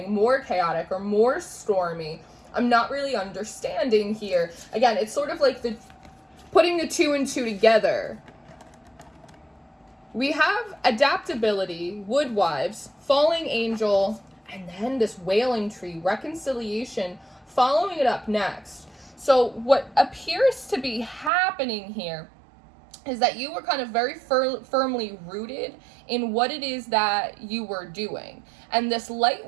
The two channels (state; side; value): drops out; left; at 21.3 s